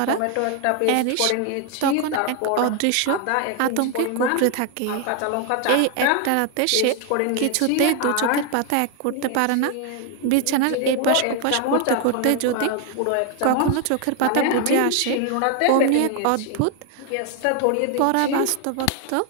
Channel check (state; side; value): different; both; correlation 0.00